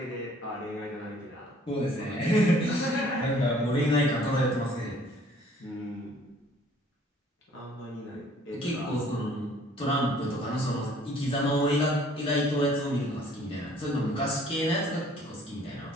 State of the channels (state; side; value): normal; both; correlation 0.57